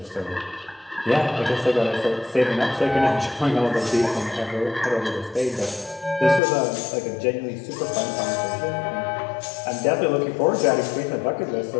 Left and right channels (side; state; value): right; drops out; at 6.4 s